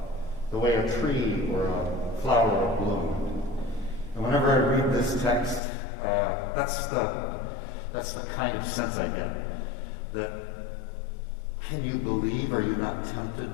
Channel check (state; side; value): drops out; right; at 5.6 s